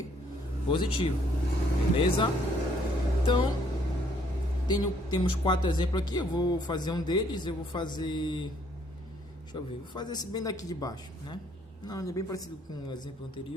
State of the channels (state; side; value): normal; both; correlation 0.65